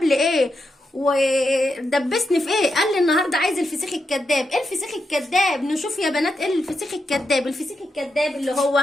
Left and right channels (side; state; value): both; normal; correlation 0.85